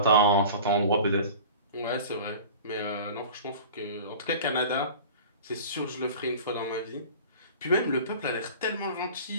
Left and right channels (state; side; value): inverted; both; correlation -0.40